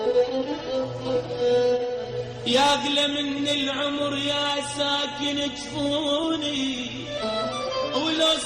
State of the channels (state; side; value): identical; both; correlation 1.00